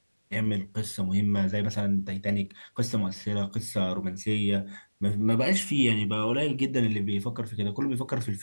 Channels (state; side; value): inverted; both; correlation -1.00